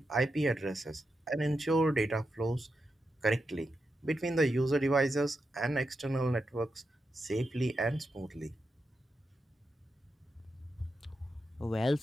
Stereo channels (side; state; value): both; normal; correlation 0.87